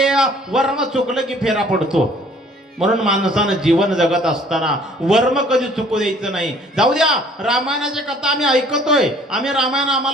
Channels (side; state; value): both; normal; correlation 0.56